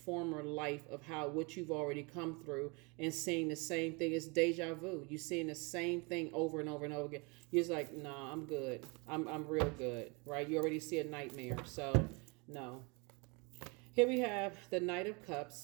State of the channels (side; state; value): left; quieter; 29.8 dB